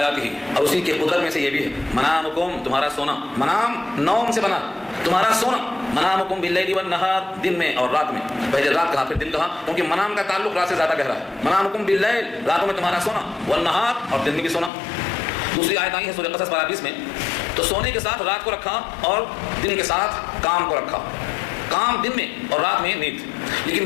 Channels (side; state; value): right; drops out; at 14.7 s